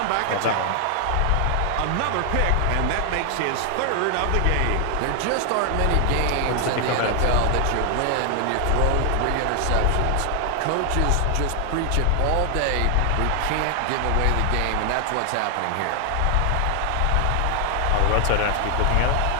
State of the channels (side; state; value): both; different; correlation 0.00